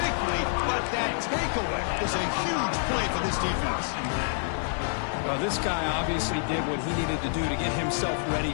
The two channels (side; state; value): right; silent; digital silence